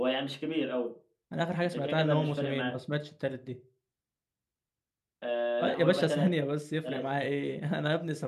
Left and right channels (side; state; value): both; identical; correlation 1.00